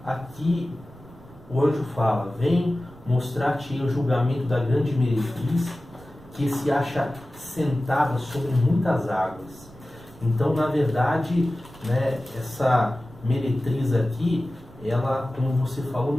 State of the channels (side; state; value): right; noise; rumble, 22 dB below the sound